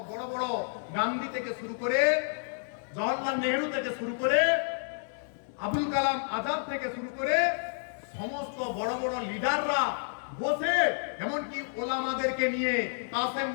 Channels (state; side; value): silent; right; digital silence